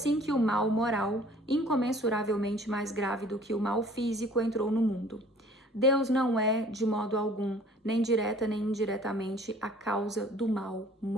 que o mal moral, incomensuravelmente mais grave do que o mal físico, entrou no mundo. Deus não é, de modo algum, nem direta nem indiretamente, a causa do mal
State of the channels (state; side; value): normal; both; correlation 0.52